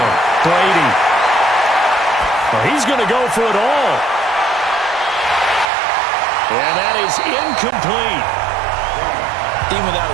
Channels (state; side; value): drops out; left; at 5.7 s